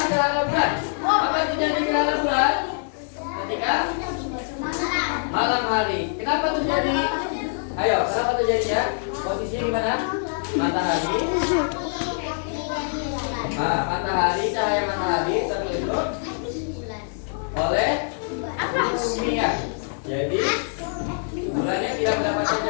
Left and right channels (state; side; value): silent; right; digital silence